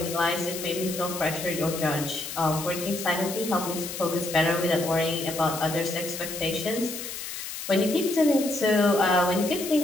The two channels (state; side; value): noise; left; hiss, 8 dB below the sound